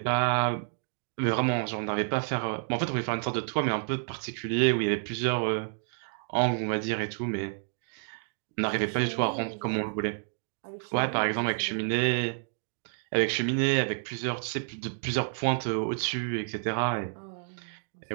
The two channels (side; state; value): left; silent; digital silence